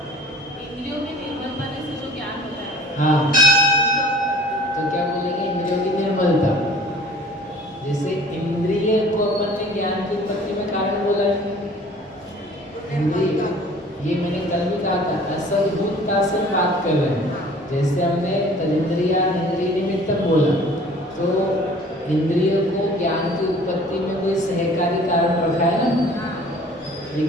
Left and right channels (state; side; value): normal; both; correlation 0.49